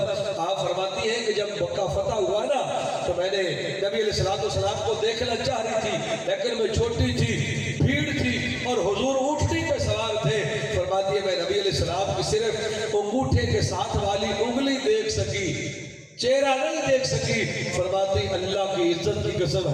آپ فرماتی ہیں کہ جب مکہ فتح ہوا نا تو میں نے نبی علیہ السلام کو دیکھنا چاہ رہی تھی، لیکن میں چھوٹی تھی، بھیڑ تھی اور حضور اونٹنی پہ سوار تھے۔ فرماتی ہے میں نبی علیہ السلام کی صرف انگوٹھے کے ساتھ والی انگلی دیکھ سکی، چہرہ نہیں دیکھ سکی۔ فرماتی اللہ کی عزت کی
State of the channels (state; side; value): identical; both; correlation 1.00